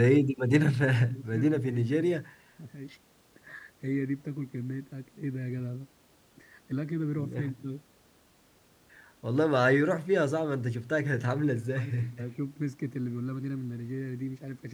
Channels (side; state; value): both; identical; correlation 1.00